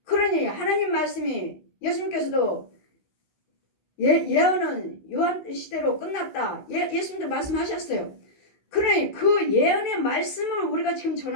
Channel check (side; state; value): right; late; 16 ms